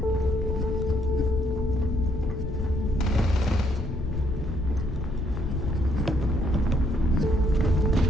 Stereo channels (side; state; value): left; noise; rumble, 5 dB below the sound